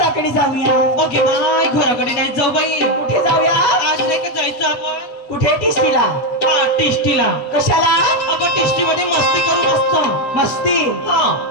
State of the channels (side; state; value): right; late; 8.3 ms